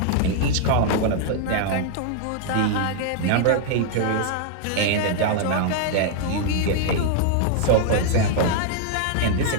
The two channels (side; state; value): both; different; correlation -0.01